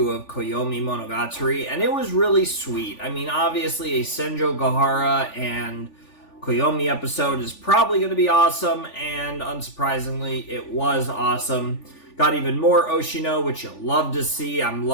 of Koyomimonogatari, and it was really sweet. Obviously a Senjo Gahara and Koyomi episode is probably going to be awesome, and unsurprisingly, it was awesome. Got even more Oshino, which you'll love to see. I'm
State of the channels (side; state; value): right; late; 3.4 ms